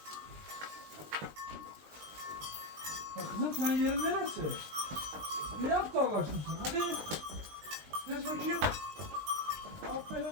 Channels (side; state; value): left; late; 20 ms